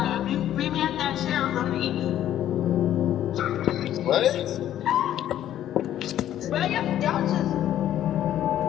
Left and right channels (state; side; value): quieter; right; 11.7 dB